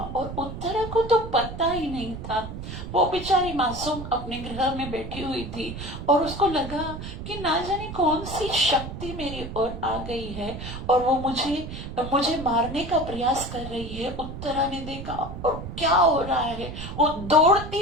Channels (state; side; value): noise; right; rumble, 9 dB below the sound